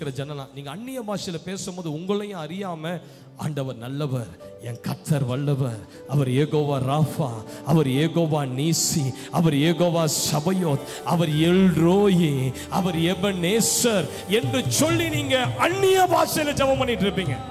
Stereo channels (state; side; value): identical; both; correlation 1.00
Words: ஜனலாம். நீங்க அந்நிய பாஷையில பேசும்போது உங்களையும் அறியாம ஆண்டவர் நல்லவர், என் கர்த்தர் வல்லவர், அவர் ஏகோவா ராஃபா, அவர் ஏகோவா நீசி, அவர் ஏகோவா சபயோத், அவர் எல்ரோயி, அவர் எபனேசர் என்று சொல்லி நீங்க அந்நிய பாஷையில ஜெபம் பண்ணிட்டு இருப்பீங்க.